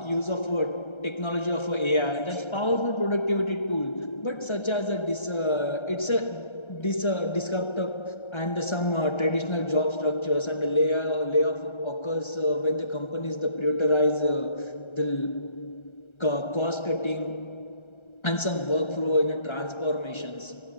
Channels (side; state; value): right; late; 1.3 ms